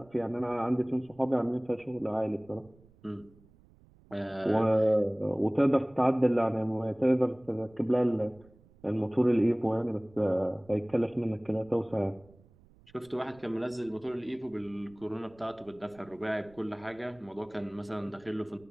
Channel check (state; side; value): noise; right; rumble, 27 dB below the sound